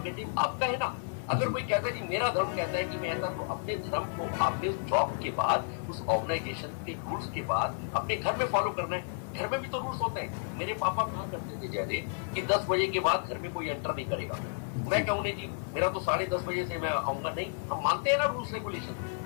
आपका है ना। अगर कोई कहता है कि मेरा धर्म कहता है कि मैं ऐसा, तो अपने धर्म को आपने उस जॉब के बाद, उस ऑर्गेनाइजेशन के रूल्स के बाद अपने घर में फॉलो करना है। घर में भी तो रूल्स होते हैं। मेरे पापा कहा करते थे जयदेव कि 10 बजे के बाद घर में कोई एंटर नहीं करेगा। मैं कहूँ नहीं जी, मेरा तो 10:30 बजे से मैं आऊंगा, नहीं, हम मानते हैं ना रूल्स रेगुलेशन।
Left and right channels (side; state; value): right; silent; 57 dB below the other